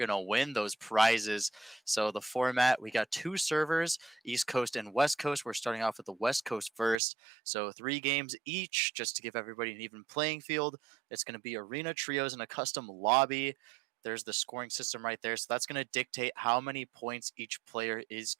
to win those prizes. So, the format, we got two servers, East Coast and West Coast. We're starting off with the West Coast first. So, three games each, just to give everybody an even playing field. It's going to be arena trios and a custom lobby. There's the scoring system right there. So, that's going to dictate how many points each player is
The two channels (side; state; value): left; drops out; at 7.0 s